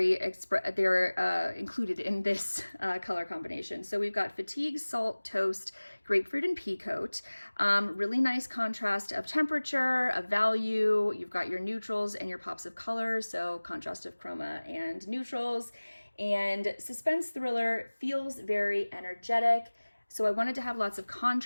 they're included in this color combination. So we've got fatigue, salt, toast, grapefruit, and pea coat. Really nice contrast of temperature, of value. You've got your neutrals and your pops of color, so contrast of chroma and neutrals. And suspense thriller feels very energetic. So I wanted to have lots of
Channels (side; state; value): both; inverted; correlation -1.00